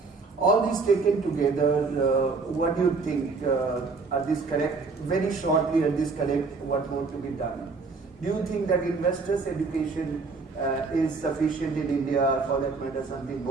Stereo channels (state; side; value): quieter; left; 4.3 dB